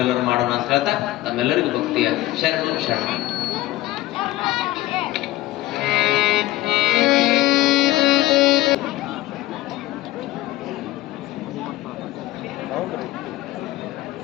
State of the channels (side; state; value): right; quieter; 16.4 dB